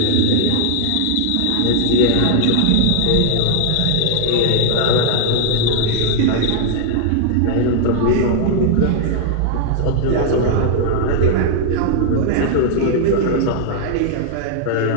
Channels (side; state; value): both; different; correlation -0.01